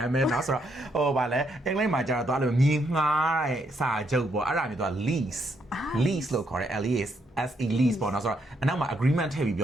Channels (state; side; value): normal; both; correlation 0.75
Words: ်မဲနော်ဆိုတော့ဗာလဲအင်္ဂလိပ်မှာကြတော့သွားလို့မြေငှားတဲ့စာချုပ်ပေါ့အဲ့ဒါမျိုးသွား lease လို့ခေါ်တယ် LEASE lease ပေါ့နော်ဆိုတော့အနောက်မှာ agreement ထည့်ပြီးပြ